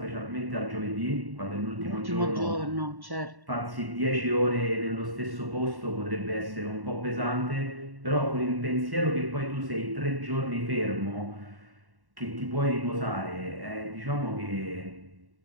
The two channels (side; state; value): left; late; 1.1 ms